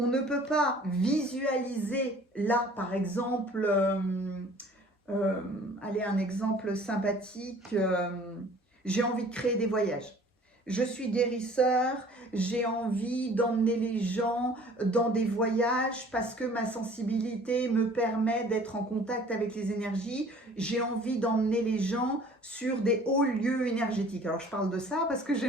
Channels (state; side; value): normal; both; correlation 0.51